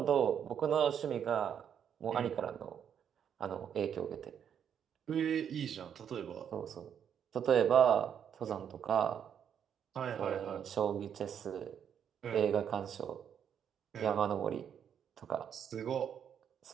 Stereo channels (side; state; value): left; quieter; 8.4 dB